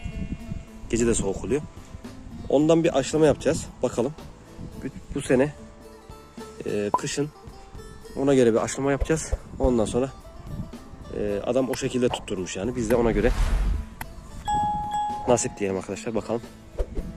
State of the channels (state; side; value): identical; both; correlation 1.00